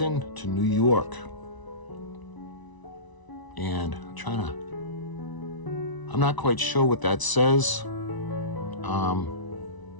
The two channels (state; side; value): late; right; 1.0 ms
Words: to New York. And I'm not quite sure what that says.